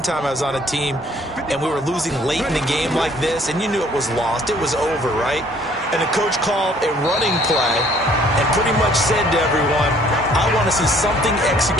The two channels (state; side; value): normal; both; correlation 0.59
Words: time I was on a team and we were losing late in the game like this, and you knew it was lost. It was over, right? And the coach called a running play and pretty much said to everyone, I want to see something